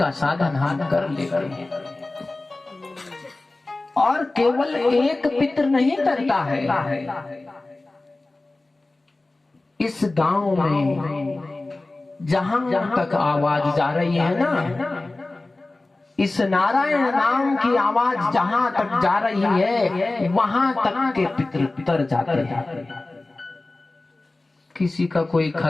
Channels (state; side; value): quieter; right; 3.0 dB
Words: साधन हम कर लेंगे। और केवल एक पितृ नहीं करता है, इस गांव में जहां तक आवाज जा रही है ना, इस नारायण नाम की आवाज जहां तक जा रही है वहां तक के पितृ तर जाते हैं। किसी का कोई